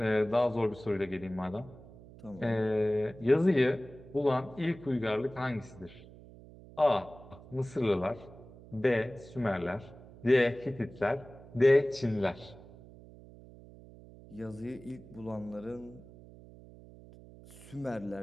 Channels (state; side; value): noise; right; hum, 19 dB below the sound